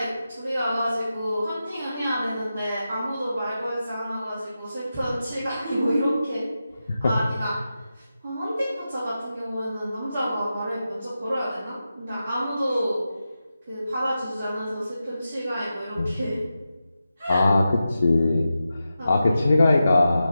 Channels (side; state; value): both; inverted; correlation -0.91